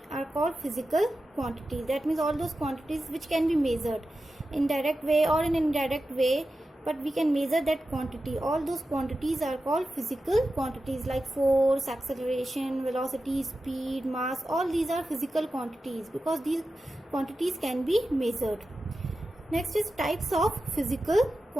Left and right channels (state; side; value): normal; both; correlation 0.92